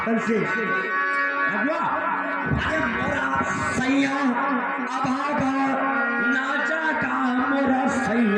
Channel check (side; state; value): both; identical; correlation 1.00